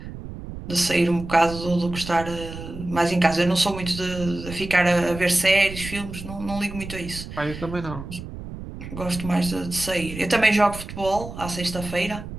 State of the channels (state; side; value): noise; right; rumble, 11 dB below the sound